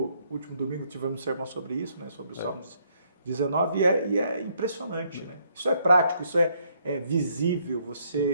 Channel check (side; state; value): both; inverted; correlation -0.70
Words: último domingo tivemos um sermão sobre isso, né, sobre o Salmos 19, e é impressionante, né? Isso é prático, isso é visível,